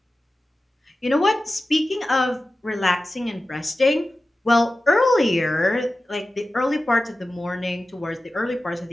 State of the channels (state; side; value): normal; both; correlation 0.95